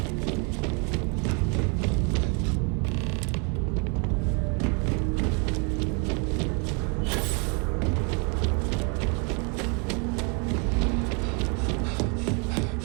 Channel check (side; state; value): left; quieter; 34.0 dB